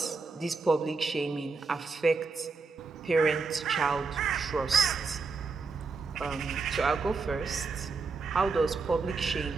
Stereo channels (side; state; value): left; quieter; 4.4 dB